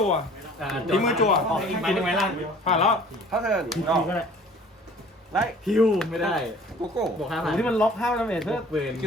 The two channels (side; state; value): both; normal; correlation 0.50